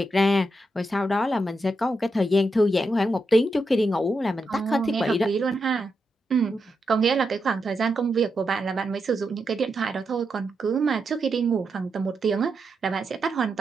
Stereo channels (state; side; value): normal; both; correlation 0.85